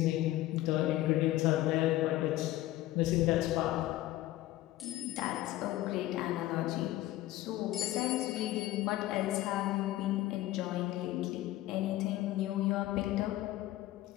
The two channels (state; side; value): quieter; right; 15.7 dB